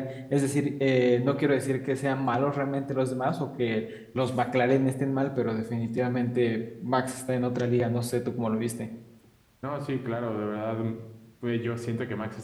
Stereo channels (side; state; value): both; identical; correlation 1.00